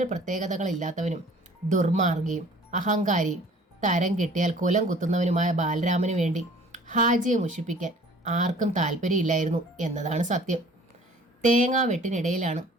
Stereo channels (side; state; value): both; normal; correlation 0.51